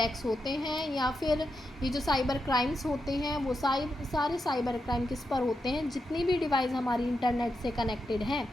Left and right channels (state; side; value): normal; both; correlation 0.86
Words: होते हैं या फिर ये जो साइबर क्राइम्स होते हैं वो सारे साइबर क्राइम किस पर होते हैं? जितनी भी डिवाइस हमारी इंटरनेट से कनेक्टेड हैं